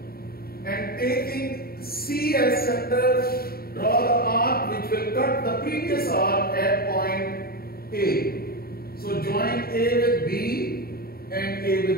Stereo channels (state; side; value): late; right; 0.44 ms